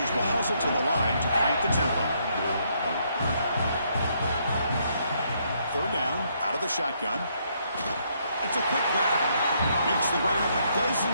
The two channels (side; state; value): both; inverted; correlation -0.73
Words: will hustle to the line to crank the tempo. 3rd down, the shotgun. It's a quick grab. Makes the ground, but